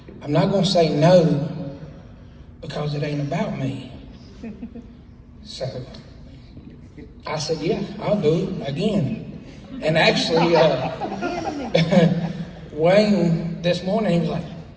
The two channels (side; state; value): both; identical; correlation 1.00